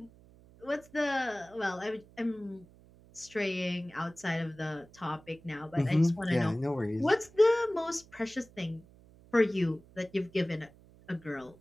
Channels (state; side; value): noise; right; hum, 25 dB below the sound